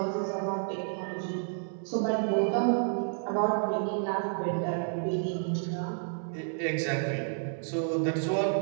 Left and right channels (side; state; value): left; silent; digital silence